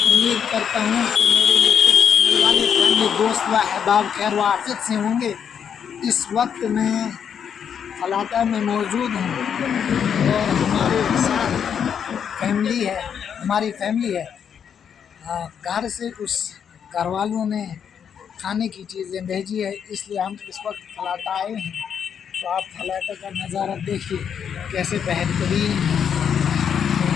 کرتا ہوں کہ میرے یوٹیوب چینل والے فیملی دوست و احباب خیر و عافیت سے ہوں گے۔ اس وقت میں فلاطہ میں موجود ہوں اور ہمارے ساتھ ہماری فیملی ہے۔ گھر سے کچھ گھر والوں نے کھانے کی چیزیں بھیجی ہے، اس لیے ہم اس وقت فلاطہ آئے ہیں۔ تو آپ فلاطہ کا نظارہ دیکھیے کیسے بہترین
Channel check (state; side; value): quieter; right; 7.9 dB